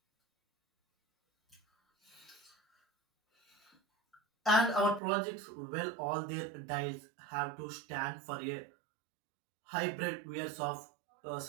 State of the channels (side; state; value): left; drops out; at 5.0 s